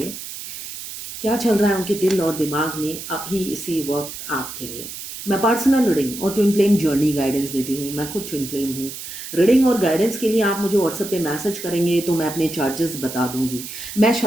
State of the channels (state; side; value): noise; right; hiss, 10 dB below the sound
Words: क्या चल रहा है उनके दिल और दिमाग में अभी इसी वक्त आपके लिए। मैं पर्सनल रीडिंग और ट्विन फ्लेम जर्नी गाइडेंस देती हूँ। मैं खुद ट्विन फ्लेम हूँ। रीडिंग और गाइडेंस के लिए आप मुझे व्हाट्सएप पे मैसेज करेंगे तो मैं अपने चार्जेस बता दूंगी। मैं